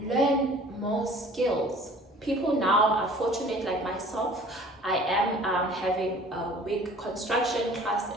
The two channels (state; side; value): normal; both; correlation 0.48